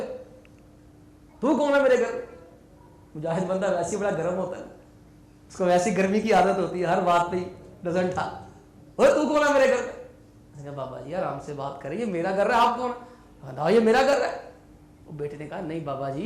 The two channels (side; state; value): both; identical; correlation 1.00